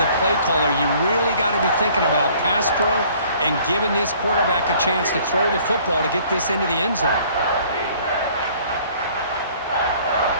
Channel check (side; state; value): both; inverted; correlation -0.56